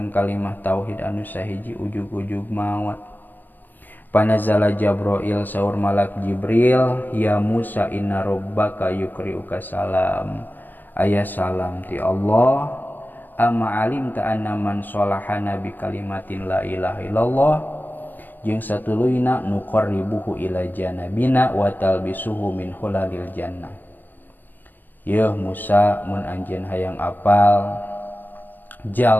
kalimah tauhid anu sahiji ujug-ujug maot. Panazala Jabrail, saur malak Jibril, ya Musa inna rabbaka yukri'uka salam, aya salam ti Allah, amma alimta anna man sholahana bi kalimatin la ilaha illallah, jeung satuluyna nuqarribuhu ila janabina wa talbisuhu min hulalil jannah. Yeuh Musa, mun anjeun hayang apal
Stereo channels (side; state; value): right; late; 0.088 ms